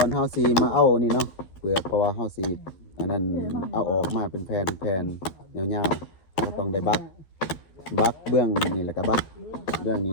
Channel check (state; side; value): late; right; 11 ms